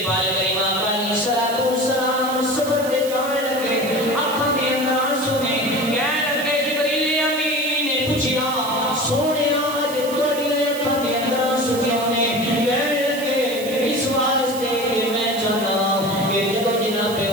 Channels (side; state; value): right; noise; hiss, 12 dB below the sound